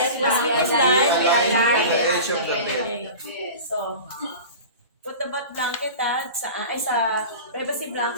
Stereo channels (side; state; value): both; inverted; correlation -0.35